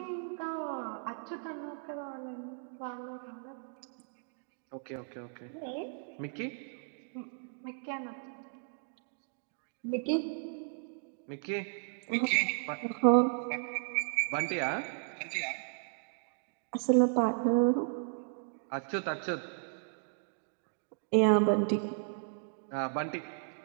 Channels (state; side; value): silent; left; digital silence